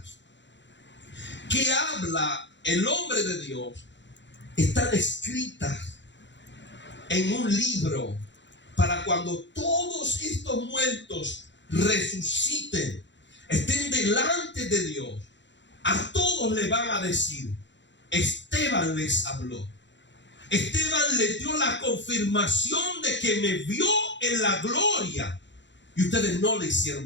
que habla el hombre de Dios están escritas en un libro para cuando todos estos muertos resuciten, estén delante de Dios. A todos le van a decir: Esteban les habló. Esteban le dio la confirmación de que me vio en la gloria y ustedes no le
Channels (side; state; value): right; late; 0.53 ms